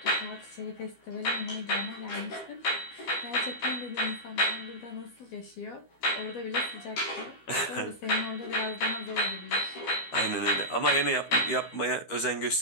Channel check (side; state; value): right; late; 12 ms